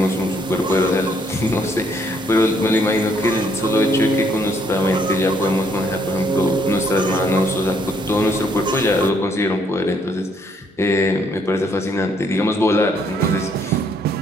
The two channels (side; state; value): both; normal; correlation 0.69